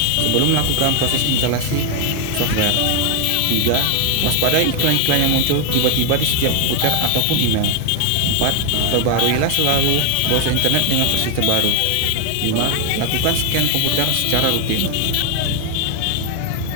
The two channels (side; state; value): both; different; correlation 0.00